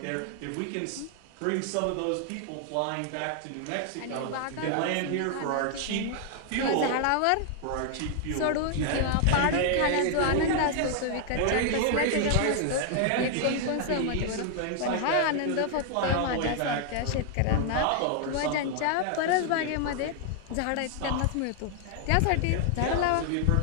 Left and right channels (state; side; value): different; both; correlation 0.00